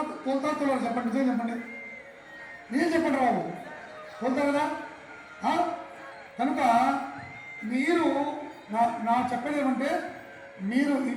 తోలుతారు చెప్పండి. చెప్పండి బాబు, తోలుతారు కదా? కనుక మీరు నా చెప్పేది ఏమంటే, మీరు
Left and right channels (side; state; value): both; identical; correlation 1.00